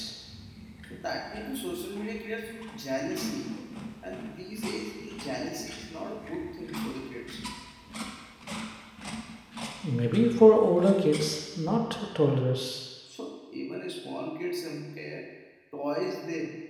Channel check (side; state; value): both; identical; correlation 1.00